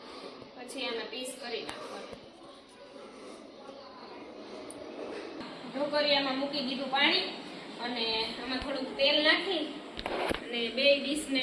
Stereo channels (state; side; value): identical; both; correlation 1.00